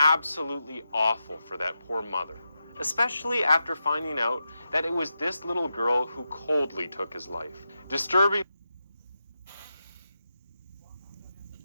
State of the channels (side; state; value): both; inverted; correlation -0.88